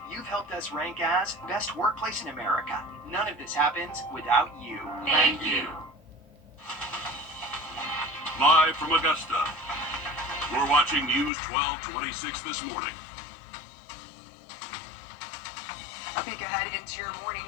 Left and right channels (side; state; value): right; drops out; at 11.3 s